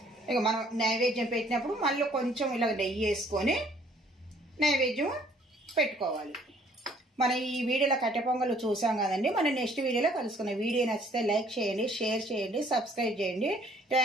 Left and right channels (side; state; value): both; normal; correlation 0.60